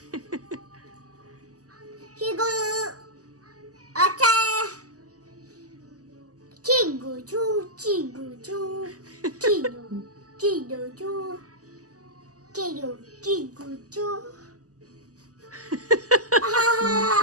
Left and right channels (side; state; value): left; late; 0.67 ms